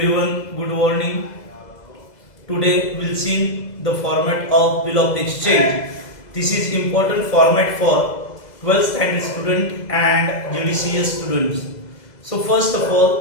good morning. Today we'll see the format of bill of exchange. This is important format for 12th standard student and GDCS students. So first of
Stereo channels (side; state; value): right; late; 2.0 ms